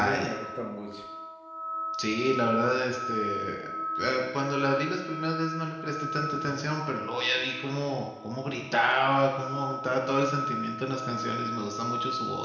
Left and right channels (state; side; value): identical; both; correlation 1.00